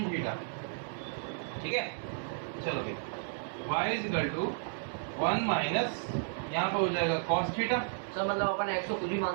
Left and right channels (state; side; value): silent; left; 56 dB below the other